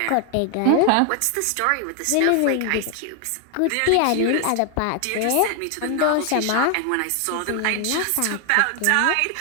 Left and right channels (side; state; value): both; different; correlation 0.00